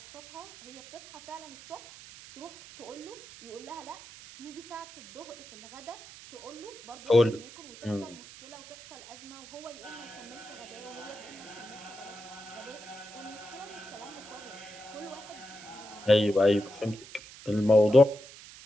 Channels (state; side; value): noise; right; hiss, 16 dB below the sound